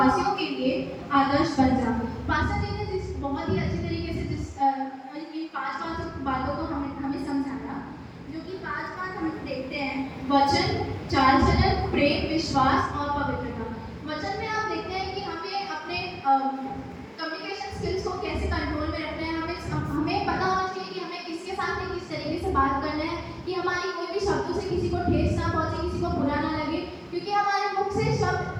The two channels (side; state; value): both; identical; correlation 1.00